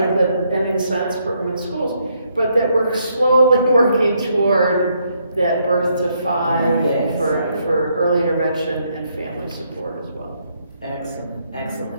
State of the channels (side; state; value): both; inverted; correlation -0.74